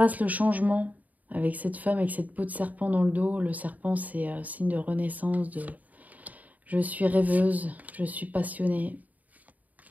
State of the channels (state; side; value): late; left; 0.075 ms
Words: le changement avec cette femme, avec cette peau de serpent dans le dos. Le serpent, c'est signe de renaissance, je suis rêveuse, je suis passionnée.